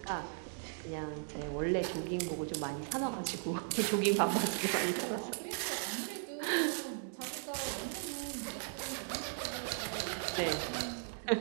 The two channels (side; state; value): left; silent; digital silence